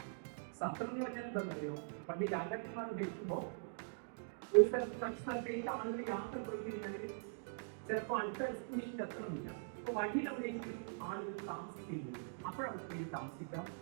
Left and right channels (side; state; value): left; silent; digital silence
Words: സത്രം എന്ന് പറഞ്ഞാൽ എന്താണെന്നറിയോ? പണ്ട് രാജാക്കന്മാർ ഭരിക്കുമ്പോൾ ഒരു സ്ഥലത്ത് മറ്റു സ്ഥലത്തേക്ക് ആളുകൾ യാത്ര പോയി കഴിഞ്ഞാൽ ചിലപ്പോൾ അടുത്ത ഡെസ്റ്റിനേഷനിൽ എത്തണമെന്നില്ല. അപ്പോൾ വഴിയിലെവിടെയെങ്കിലും ആളുകൾ താമസിക്കുന്നത്, അപ്പോഴവർക്ക് താമസിക്കാം,